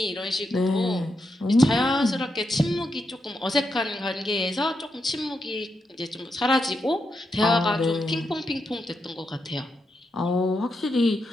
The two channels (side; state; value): both; normal; correlation 0.84